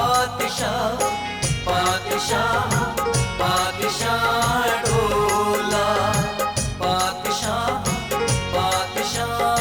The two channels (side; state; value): both; identical; correlation 1.00